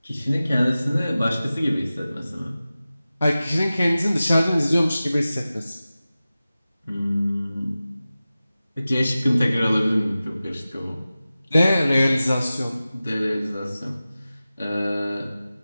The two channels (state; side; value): inverted; both; correlation -0.96